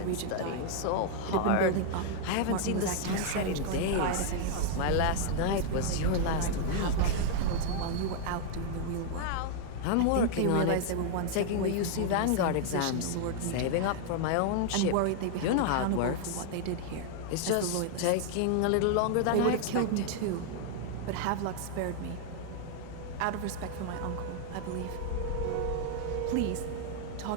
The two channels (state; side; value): different; both; correlation 0.00